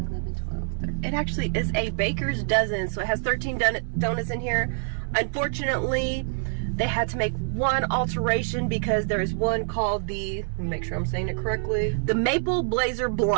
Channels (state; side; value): silent; left; 58 dB below the other